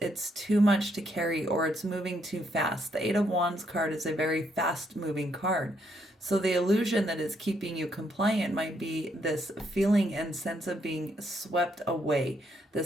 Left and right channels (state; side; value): normal; both; correlation 0.74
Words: too much to carry, or it's moving too fast. The Eight of Wands card is a very fast moving card. So the illusion that is keeping you compliant might be this feeling and sense of being swept away,